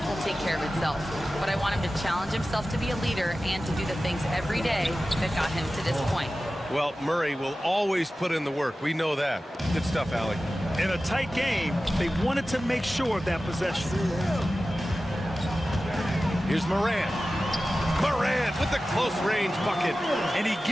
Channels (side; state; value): both; normal; correlation 0.95